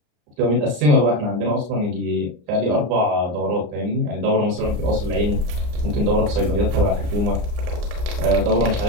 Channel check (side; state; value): left; late; 34 ms